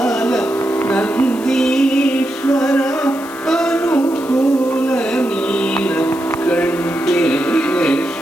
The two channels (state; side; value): noise; left; hiss, 19 dB below the sound